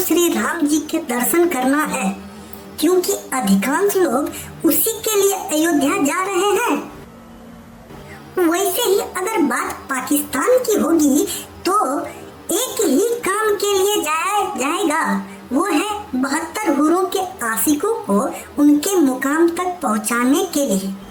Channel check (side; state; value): both; identical; correlation 1.00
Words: राम जी के दर्शन करना है, क्योंकि अधिकांश लोग उसी के लिए अयोध्या जा रहे हैं। वैसे ही अगर बात पाकिस्तान की होगी तो एक ही काम के लिए जाया जाएगा, वो है 72 हुरों के आशिकों को उनके मुकाम तक पहुंचाने के लिए।